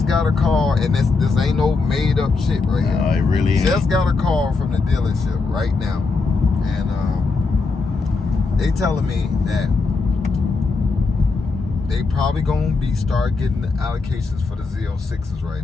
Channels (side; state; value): right; quieter; 4.1 dB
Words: got a call, and this ain't no made up shit right here. No, it really ain't. Just got a call from the dealership right now, and they telling me that they probably gonna start getting the allocations for the Z06s right